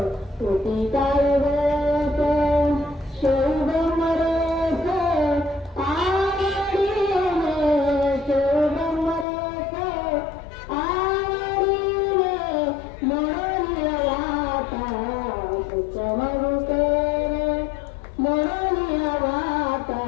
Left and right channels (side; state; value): right; drops out; at 9.2 s